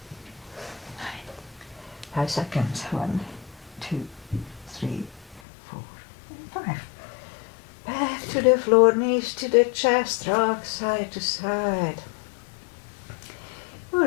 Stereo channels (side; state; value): right; drops out; at 5.4 s